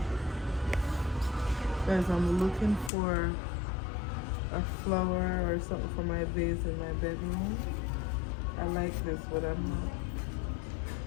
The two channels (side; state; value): right; drops out; at 2.9 s